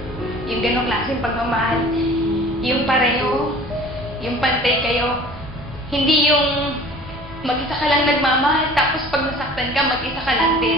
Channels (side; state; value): both; normal; correlation 0.45